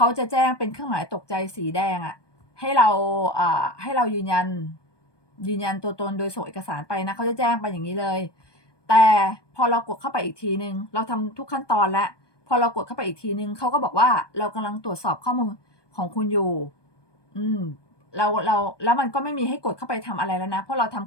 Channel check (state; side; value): late; right; 1.2 ms